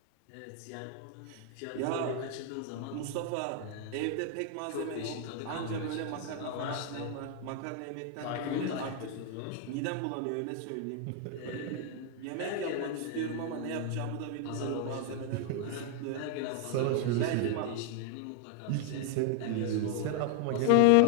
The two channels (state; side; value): different; both; correlation 0.00